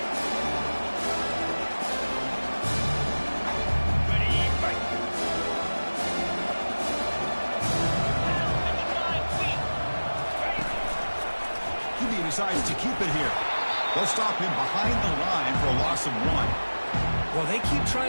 Decides to keep it here. They'll stop him behind the line for a loss of 1. Well, they keep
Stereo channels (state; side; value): inverted; both; correlation -1.00